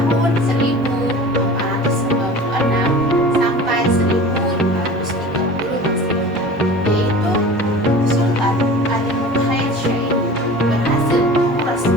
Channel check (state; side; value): normal; both; correlation 0.39